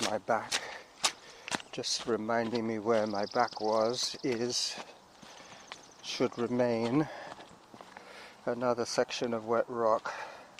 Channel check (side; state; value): both; identical; correlation 1.00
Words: my back, just reminding me where my back should remain. Another section of wet rock.